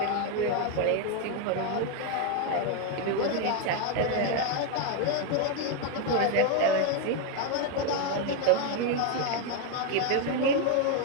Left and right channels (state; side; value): different; both; correlation 0.01